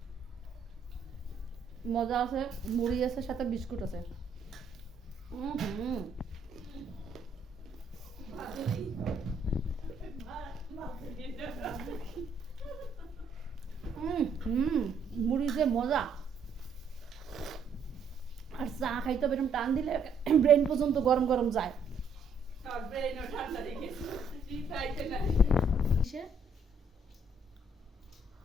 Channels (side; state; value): left; quieter; 3.3 dB